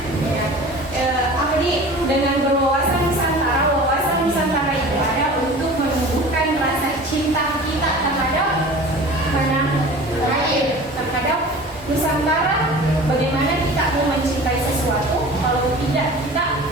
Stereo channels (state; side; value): normal; both; correlation 0.40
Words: Apa nih dengan berwawasan Nusantara itu ada untuk menumbuhkan rasa cinta kita terhadap terhadap Nusantara. Bagaimana kita mau mencintai sesuatu kalau tidak kita